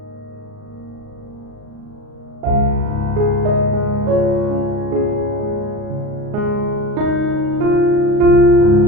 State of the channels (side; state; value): left; late; 38 ms